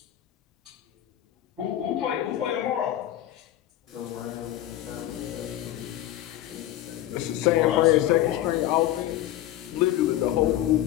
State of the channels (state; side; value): quieter; right; 13.2 dB